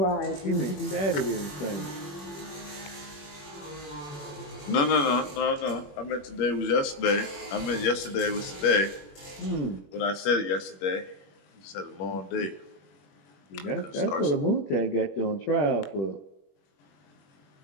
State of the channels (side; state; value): right; late; 21 ms